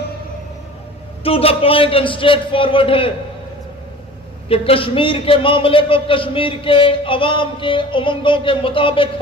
to the point and straightforward ہے کہ کشمیر کے معاملے کو کشمیر کے عوام کے امنگوں کے مطابق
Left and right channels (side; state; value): both; normal; correlation 0.42